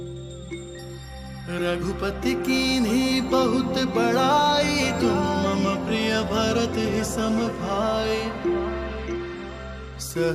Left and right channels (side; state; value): both; identical; correlation 1.00